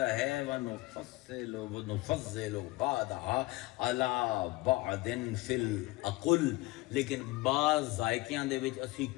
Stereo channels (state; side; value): quieter; right; 21.4 dB